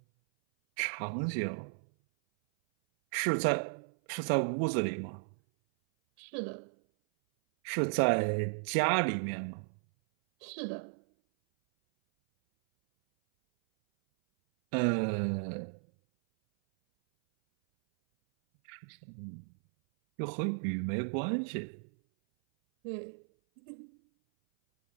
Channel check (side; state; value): left; silent; 55 dB below the other